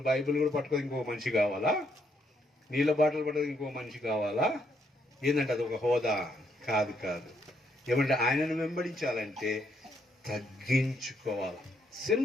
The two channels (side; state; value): both; normal; correlation 0.74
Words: బైబిల్ కూడా పట్టుకొని ఇంకో మనిషి కావాలా? నీళ్ళ బాటలు పట్టుకొని ఇంకో మనిషి కావాలా? ఏంటంటే అది ఒక హోదా కాదు. ఏమంటే ఆయనను వెంబడించాలంటే తగ్గించుకోవాలి.